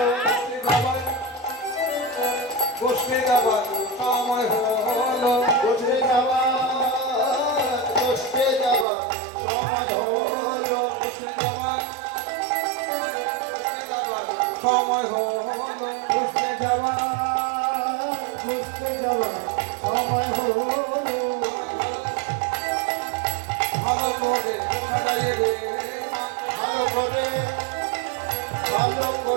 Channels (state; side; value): drops out; left; at 8.8 s